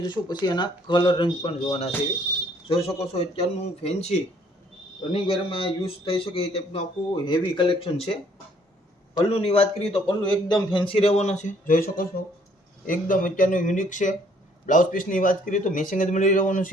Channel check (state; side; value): normal; both; correlation 0.63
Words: જોશું, પછી એના કલર રંગ પણ જોવાના છે. જોઈ શકો છો અત્યારનું ફેન્સી રનિંગ વેરમાં યુઝ થઈ શકે એ ટાઈપનું આખું હેવી કલેક્શન છે. પલ્લુની વાત કરીએ તો પલ્લુ એકદમ ફેન્સી રહેવાનો છે. જોઈ શકો છો એકદમ અત્યારનું યુનિક છે. બ્લાઉઝ પીસની વાત કરીએ તો મેચિંગ જ મળી રહેવાનું